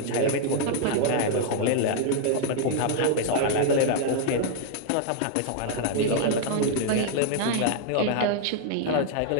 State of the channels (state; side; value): different; both; correlation -0.01